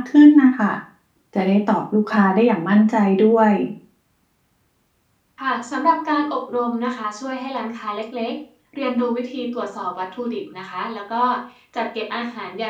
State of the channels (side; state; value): both; identical; correlation 1.00